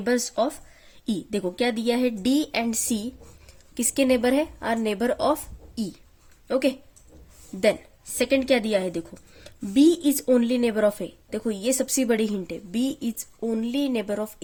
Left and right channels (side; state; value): both; identical; correlation 1.00